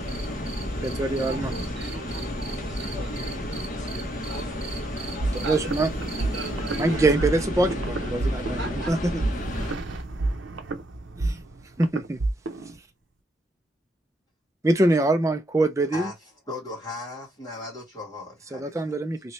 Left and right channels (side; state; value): both; normal; correlation 0.75